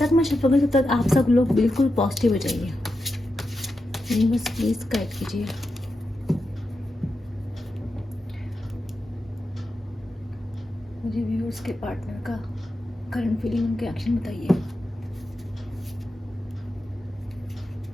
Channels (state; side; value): normal; both; correlation 0.88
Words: मैं छपूंगी तब तक आप सब लोग बिल्कुल पॉजिटिव हो जाइए। बस प्लीज गाइड कीजिए। मुझे व्यूअर्स के पार्टनर का करंट फीलिंग, उनके एक्शन बताइए।